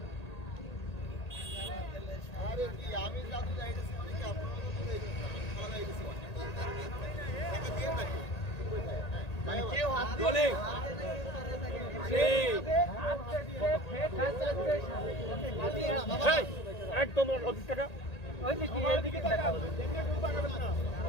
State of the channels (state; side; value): late; right; 1.8 ms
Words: আরে কি আমি জাদু যাইতেছি মানে কি আপনারা তো যাইতেছেন আমি খালা যাইতেছি টাকা দিয়ে নাকি মানে কেউ হাত বলে একদম 25 টাকা